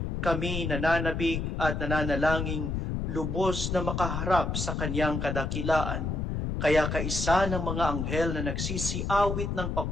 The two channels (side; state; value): left; noise; rumble, 2 dB below the sound